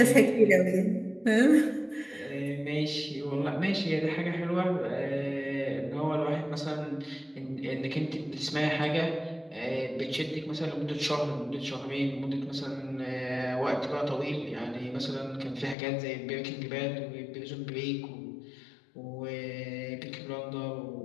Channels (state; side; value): drops out; right; at 15.8 s